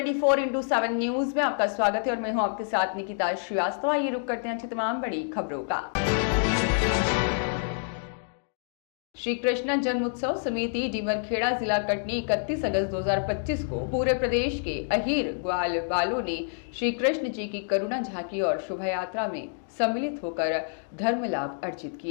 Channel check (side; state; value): right; silent; digital silence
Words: न्यूज में आपका स्वागत है और मैं हूं आपके साथ निकिता श्रीवास्तव। आइए रुक करते हैं तमाम बड़ी खबरों का। श्री कृष्ण जन्मोत्सव समिति डीमरखेड़ा जिला कटनी 31 अगस्त 2025 को पूरे प्रदेश के अहीर ग्वाल वालों ने श्री कृष्ण जी की करुणा झांकी और शोभा यात्रा में सम्मिलित होकर धर्म लाभ अर्जित